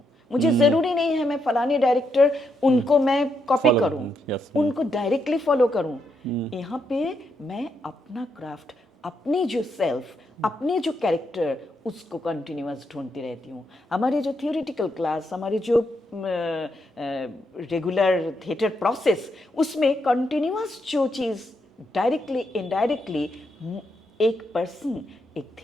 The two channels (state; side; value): normal; both; correlation 0.79